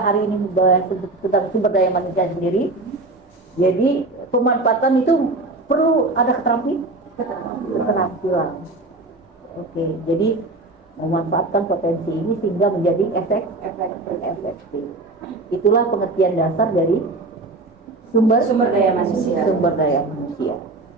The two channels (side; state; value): left; quieter; 3.1 dB